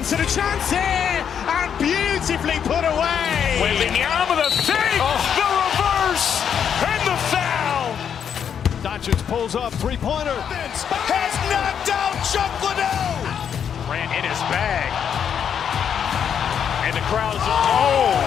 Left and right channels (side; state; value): right; quieter; 8.1 dB